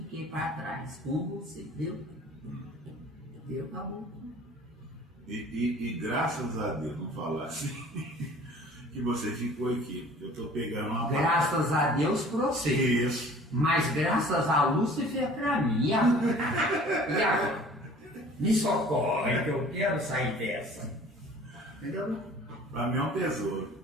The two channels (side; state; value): both; normal; correlation 0.48